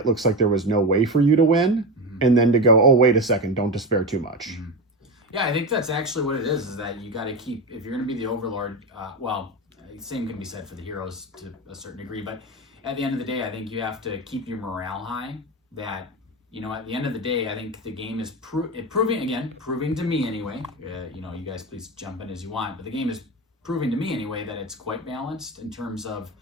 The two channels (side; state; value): both; normal; correlation 0.20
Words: looks like there was no way for you to win. And then to go, oh, wait a second, don't despair too much. Yeah, I think that's actually what it is that you got to keep, if you're going to be the Overlord, same can be said for the heroes to a certain degree, but at the end of the day, I think you have to keep your morale high. That, you know, at the end of the day, I think the game is proving to me anyway, you guys please jump in as you want, but the game is proving to me anyway that it's quite balanced in terms of